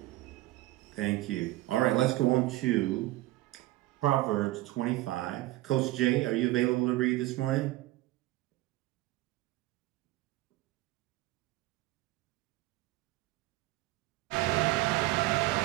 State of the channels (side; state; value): left; quieter; 17.9 dB